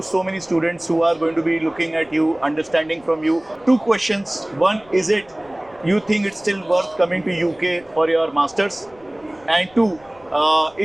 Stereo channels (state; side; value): noise; left; rumble, 28 dB below the sound